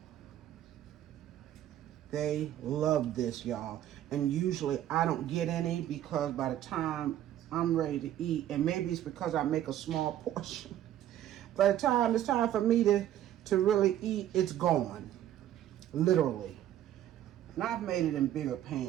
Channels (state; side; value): quieter; left; 12.0 dB